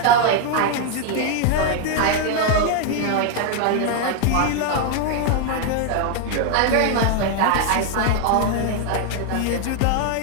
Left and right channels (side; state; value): both; different; correlation 0.00